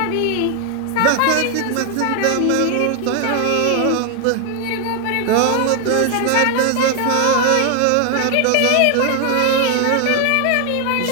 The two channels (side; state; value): both; different; correlation 0.00